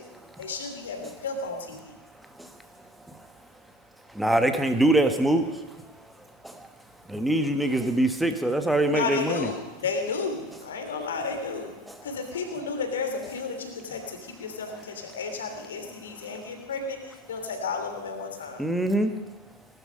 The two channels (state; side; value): normal; both; correlation 0.49